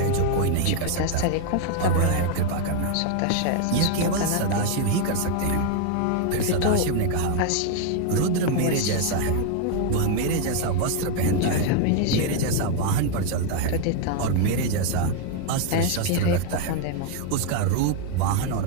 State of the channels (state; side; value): different; both; correlation 0.01